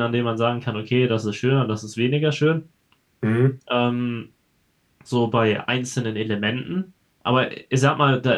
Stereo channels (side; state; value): both; identical; correlation 1.00